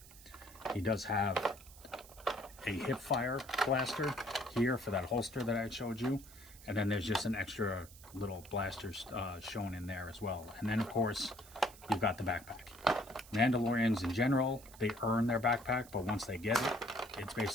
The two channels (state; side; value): noise; right; hiss, 20 dB below the sound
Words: He does have a hip fire blaster here for that holster that I showed you, and then there's just an extra little blaster shown in there as well. And then of course you've got the backpack. Mandalorians in general, they earn their backpack, but once they get it, it's